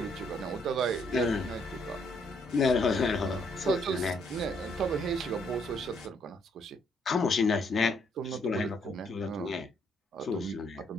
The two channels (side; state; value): both; normal; correlation 0.70